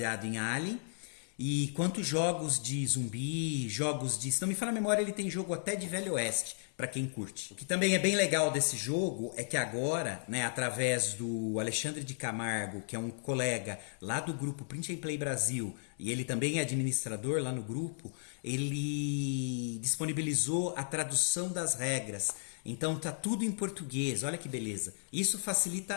em Alien, e quanto jogos de zumbi, jogos de... Se não me falha a memória, ele tem jogo até de Velho Oeste, para quem curte. O que também é bem legal desse jogo é que agora, né, através do Alexandre de Camargo, que é um colega lá do grupo Print and Play Brasil, e ele também é administrador lá no grupo, ele disponibilizou a tradução das regras. Então tá tudo em português, olha que beleza. Isso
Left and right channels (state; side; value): silent; right; 55 dB below the other